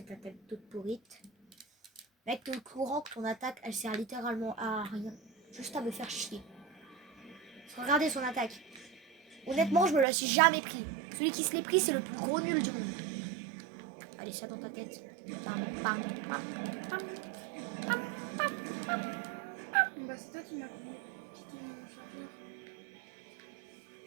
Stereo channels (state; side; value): drops out; left; at 10.1 s